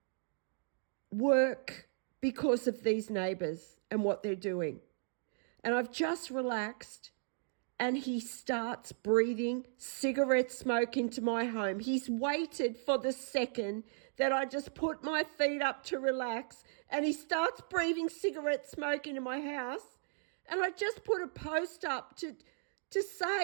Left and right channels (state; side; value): silent; left; digital silence